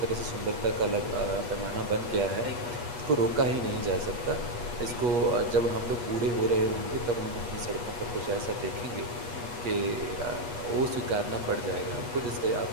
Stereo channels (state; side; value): late; left; 8.3 ms